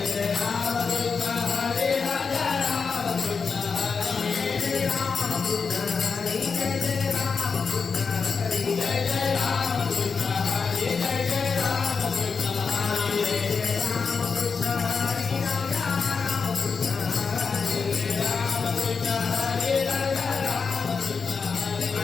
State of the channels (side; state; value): right; quieter; 5.3 dB